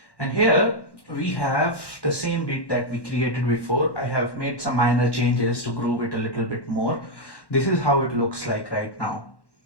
And here we have the same beat that we created before. I have made some minor changes to groove it a little bit more. This is how it looks like right now.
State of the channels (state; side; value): late; right; 1.1 ms